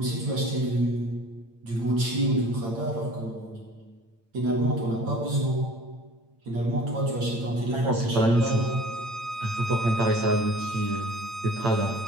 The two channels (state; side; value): late; left; 8.8 ms